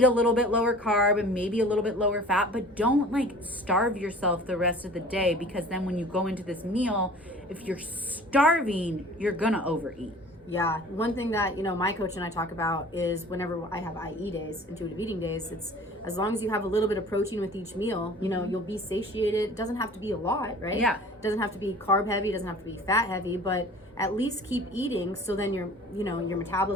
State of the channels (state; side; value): normal; both; correlation 0.45